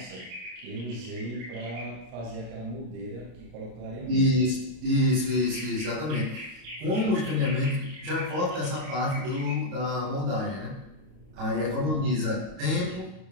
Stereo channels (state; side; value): late; left; 32 ms